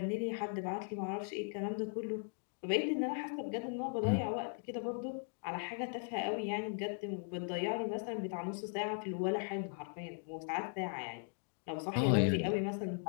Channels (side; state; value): right; silent; 52 dB below the other